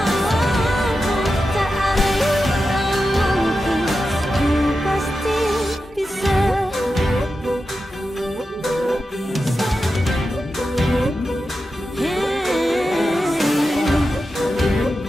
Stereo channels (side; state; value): both; normal; correlation 0.91